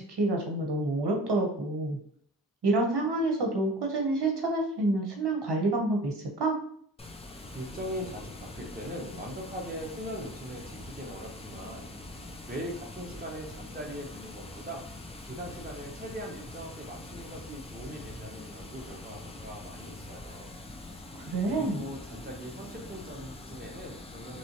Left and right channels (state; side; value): normal; both; correlation 0.41